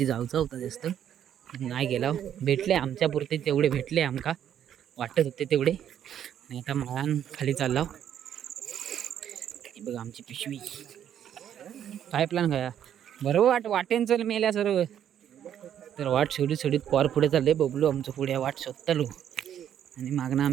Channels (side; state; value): left; quieter; 9.9 dB